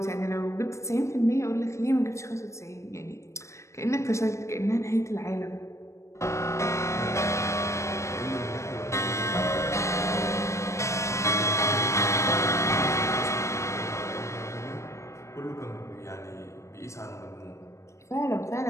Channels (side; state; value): right; late; 0.14 ms